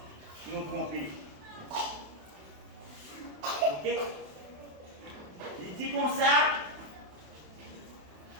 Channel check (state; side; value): late; left; 27 ms